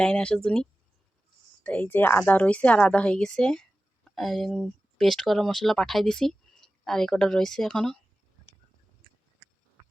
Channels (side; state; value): both; normal; correlation 0.95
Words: লাইন আসার জন্য। তো এই যে আদা রয়েছে, আর আদা হয়ে গেছে, পেস্ট করা মশলা পাঠাই দিছি, আর এই কটা রয়েছে এখনো।